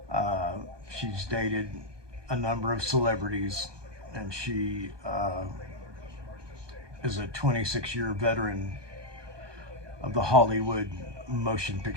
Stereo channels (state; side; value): late; left; 1.2 ms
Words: She's dated a number of celebrities, and she is a 26-year veteran of the Hollywood motion